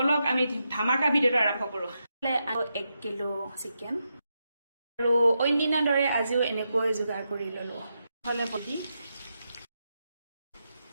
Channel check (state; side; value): inverted; both; correlation -0.85